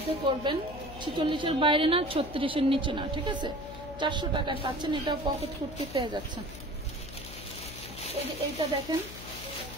করবেন, 46-এর বাইরে না, 36-এর নিচে না, ঠিক আছে? 400 টাকায় পাচ্ছেন। এটাও পকেট কুর্তি পেয়ে যাচ্ছেন। এই যে এইটা দেখেন,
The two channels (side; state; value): left; noise; hum, 13 dB below the sound